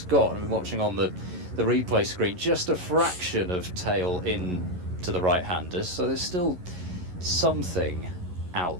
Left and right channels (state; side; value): late; left; 11 ms